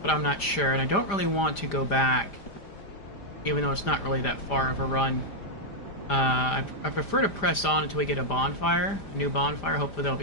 But I'm not sure, and I don't really want to go back, even though it's not really that far of a run. I prefer to press on until we get a bonfire, a new bonfire. Hopefully that'll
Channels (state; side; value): late; right; 5.0 ms